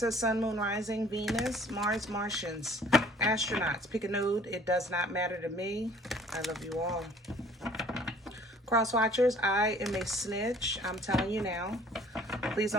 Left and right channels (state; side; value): normal; both; correlation 0.55